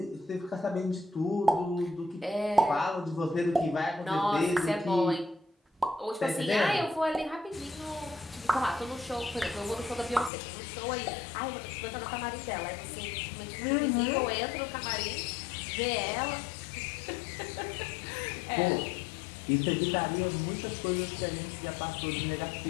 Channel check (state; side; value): drops out; right; at 10.3 s